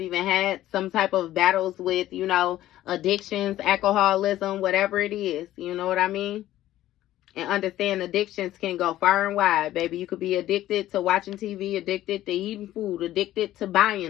had some type of battles with, you know, addictions, alcoholism, whatever it is. You know what I mean? And understand addictions can go far and wide, baby. You could be addicted to watching TV, addicted to eating food, addicted to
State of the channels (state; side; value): quieter; right; 14.0 dB